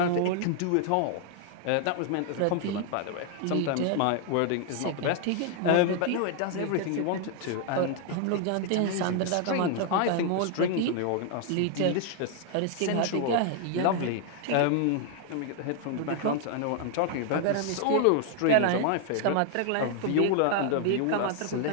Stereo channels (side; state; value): both; different; correlation 0.00